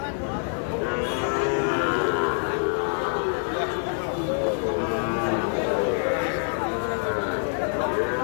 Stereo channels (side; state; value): right; silent; 61 dB below the other